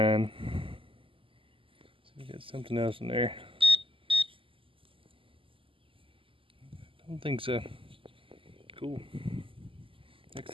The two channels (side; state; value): left; late; 0.25 ms